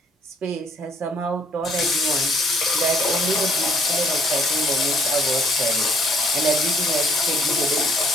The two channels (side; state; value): both; normal; correlation 0.61